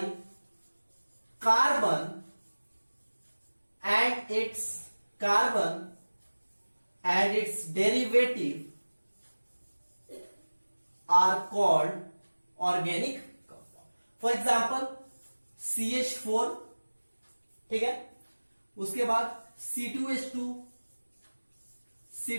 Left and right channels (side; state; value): both; inverted; correlation -1.00